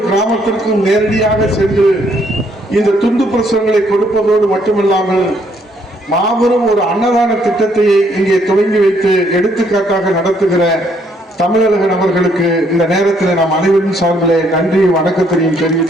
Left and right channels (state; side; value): normal; both; correlation 0.69